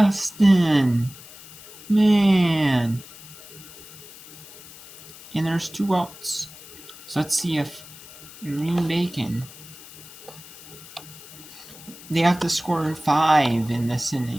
Man. And there's 2 outs. So let's see if Green Bay can. They have to score 5 in this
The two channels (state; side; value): noise; left; hiss, 18 dB below the sound